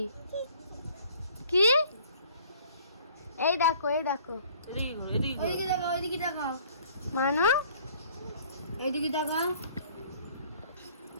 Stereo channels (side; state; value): both; inverted; correlation -0.55